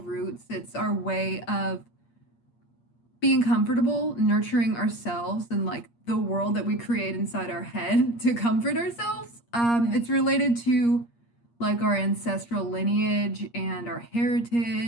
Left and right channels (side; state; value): right; late; 8.5 ms